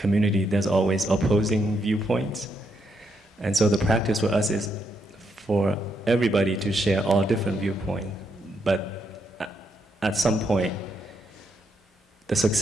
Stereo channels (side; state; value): both; normal; correlation 0.78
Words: there's always opposing viewpoints. And so the practice for us is for everybody to share all different viewpoints. But at some point, the